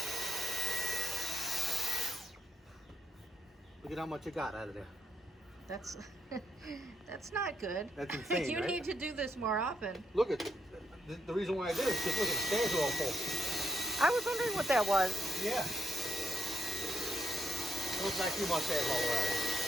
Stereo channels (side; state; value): both; normal; correlation 0.81